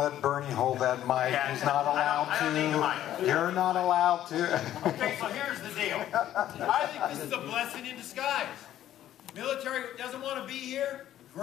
Bernie hold that mic. Yeah, he's not allowed I don't need the mic. to. You're not allowed to. Okay, so here's the deal. I think this is a blessing in disguise. Military doesn't want to be here?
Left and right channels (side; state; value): right; quieter; 12.2 dB